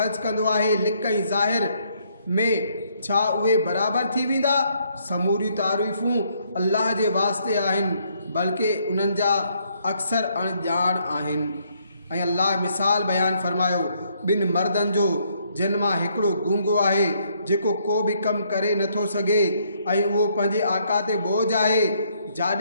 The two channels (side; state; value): both; inverted; correlation -0.70